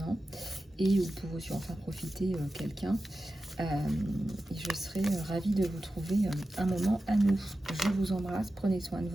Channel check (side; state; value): both; normal; correlation 0.93